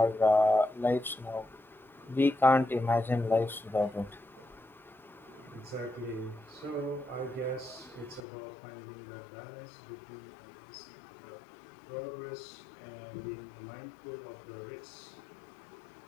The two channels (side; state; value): right; drops out; at 8.2 s